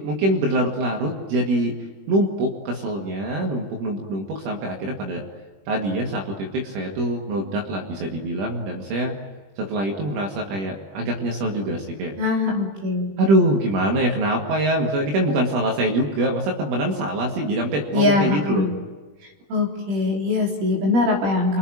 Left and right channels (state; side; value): late; left; 21 ms